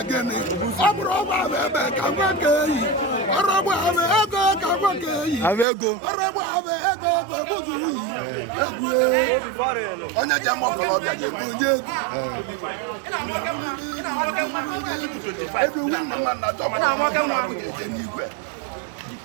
onye ji ama ọkọlọbịa ga-egbu onye egwu ebe nwanne nwanna chọpụrụ na abụja eje n'igwe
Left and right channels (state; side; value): drops out; left; at 5.7 s